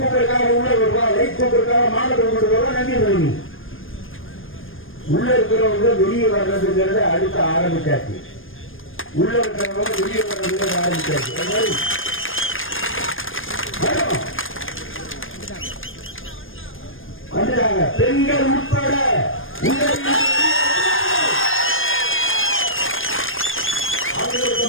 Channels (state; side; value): late; right; 0.59 ms